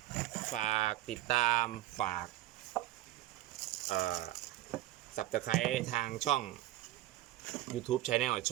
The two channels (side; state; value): left; quieter; 15.3 dB